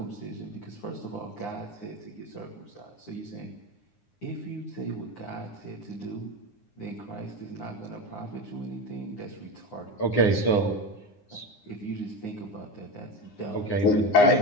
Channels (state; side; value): late; right; 9.8 ms